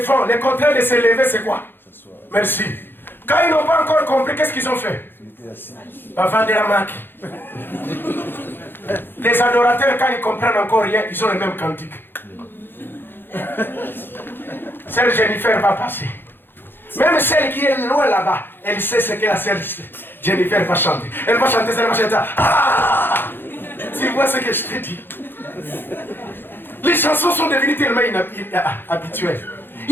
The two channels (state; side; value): late; right; 0.10 ms